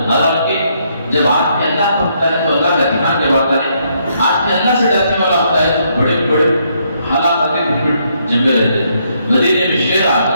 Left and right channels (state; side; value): inverted; both; correlation -0.73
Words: حالانکہ جب آدمی اللہ کو ہوتا ہے تو اللہ کا دھیان جب آتا ہے، آدمی اللہ سے ڈرنے والا ہوتا ہے تو بڑے بڑے حالات آتے پھر جنگل رہتے ہیں۔ مدینے میں شیر آ